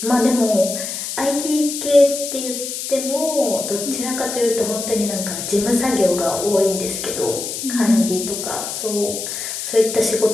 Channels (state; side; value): noise; left; hiss, 6 dB below the sound